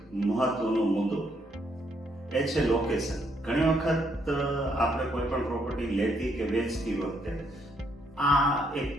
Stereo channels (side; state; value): both; normal; correlation 0.73